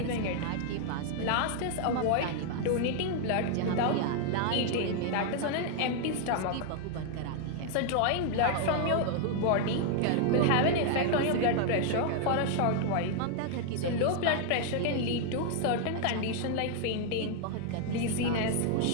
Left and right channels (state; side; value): different; both; correlation 0.00